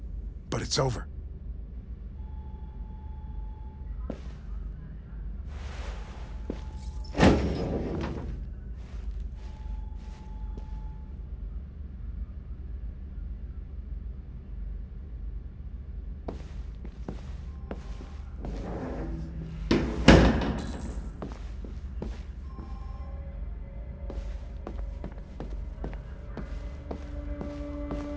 but it's over.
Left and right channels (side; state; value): both; identical; correlation 1.00